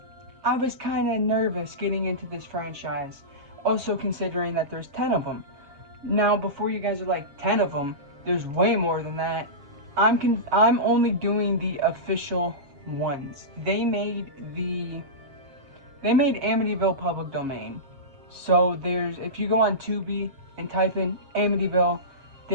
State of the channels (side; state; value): left; late; 7.3 ms